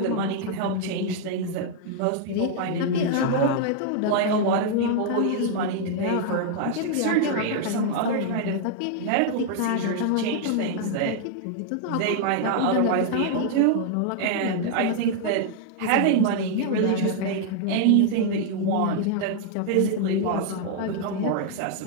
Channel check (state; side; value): different; both; correlation -0.01